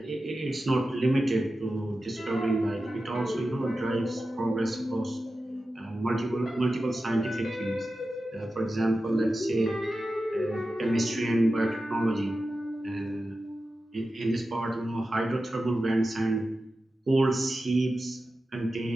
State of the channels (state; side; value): normal; both; correlation 0.92